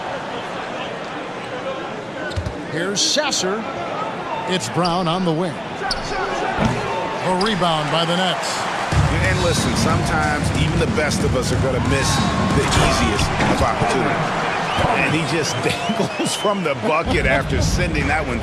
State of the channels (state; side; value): identical; both; correlation 1.00